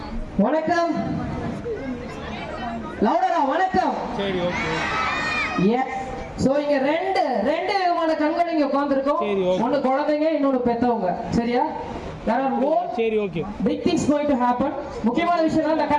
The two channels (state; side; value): identical; both; correlation 1.00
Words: வணக்கம். லவுடரா வணக்கம். சரி ஓகே. எஸ். சோ இங்க ரெண்டு விதமான கண்கள் இங்க உட்கார்ந்திருக்கோம். ஒன்னு குழந்தைங்க, இன்னொன்னு பெத்தவங்க. சரியா? There are more சரி okay. big things going to happen. முக்கியமான விஷயம் அந்த